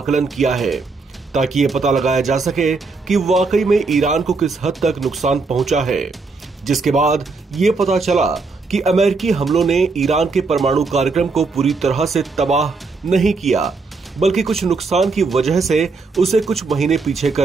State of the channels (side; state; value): left; quieter; 4.1 dB